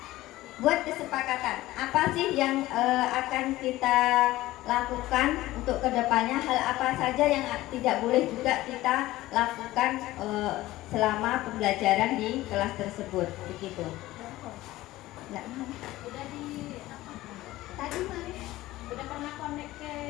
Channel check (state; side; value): quieter; right; 16.9 dB